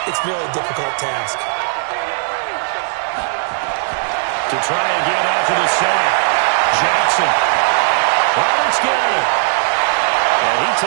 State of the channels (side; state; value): left; silent; 68 dB below the other